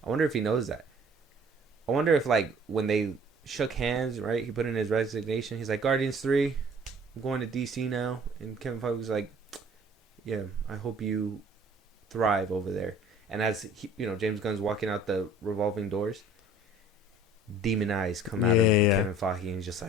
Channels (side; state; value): both; normal; correlation 0.51